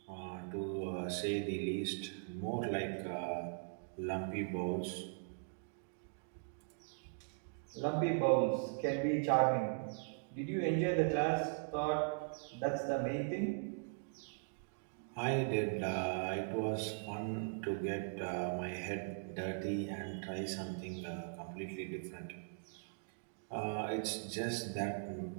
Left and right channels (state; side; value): silent; left; digital silence